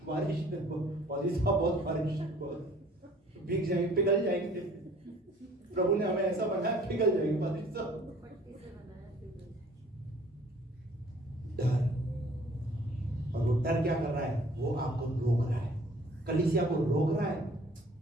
बारिश बहुत बारिश, भीग जाएंगे, पिघल जाएंगे। प्रभु ने हमें ऐसा बनाया, पिघल जाएंगे बारिश से। डर। और वो डर क्या कर रहा है? वो आपको रोक रहा है, कलीसिया को रोक रहा है।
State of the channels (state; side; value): normal; both; correlation 0.54